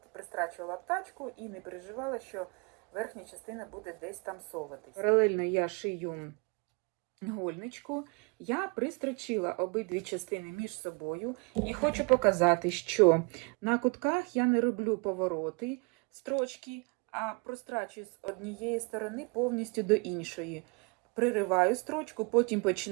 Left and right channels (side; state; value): left; quieter; 32.2 dB